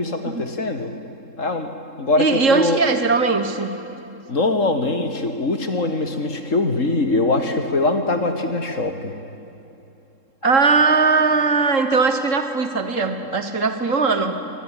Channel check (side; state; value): right; late; 3.7 ms